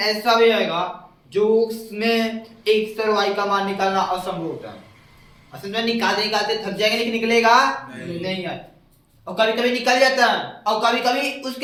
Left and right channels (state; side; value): identical; both; correlation 1.00